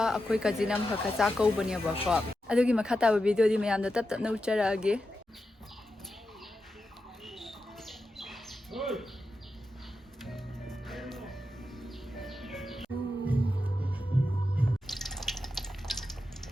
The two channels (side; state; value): both; normal; correlation 0.89